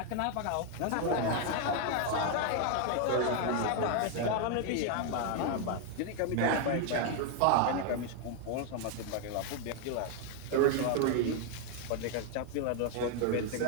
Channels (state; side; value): different; both; correlation 0.00